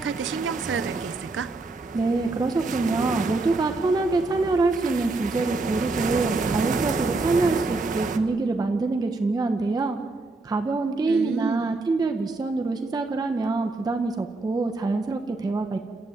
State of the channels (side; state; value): left; quieter; 3.3 dB